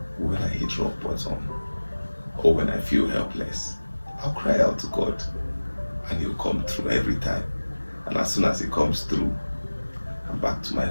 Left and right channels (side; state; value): both; inverted; correlation -1.00